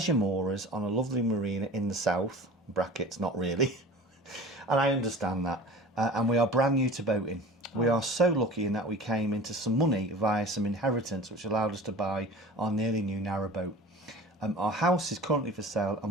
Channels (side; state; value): both; normal; correlation 0.39